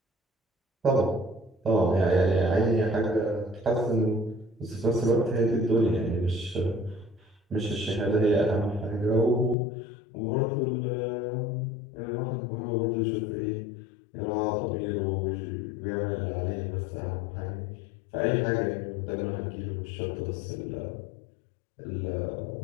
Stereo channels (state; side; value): drops out; right; at 9.6 s